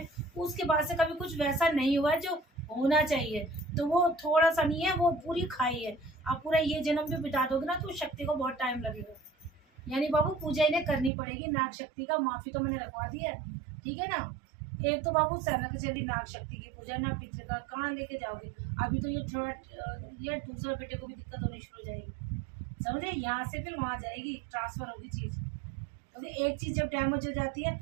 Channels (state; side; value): drops out; left; at 11.1 s